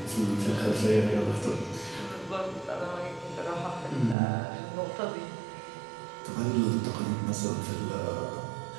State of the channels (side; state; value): left; drops out; at 4.2 s